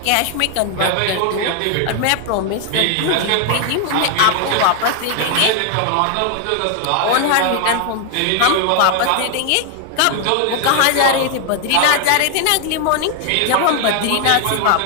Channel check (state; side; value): different; both; correlation 0.00